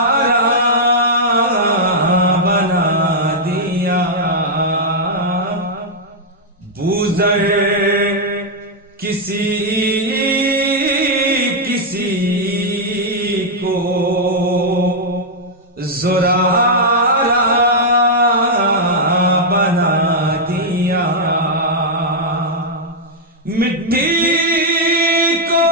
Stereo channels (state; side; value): normal; both; correlation -0.04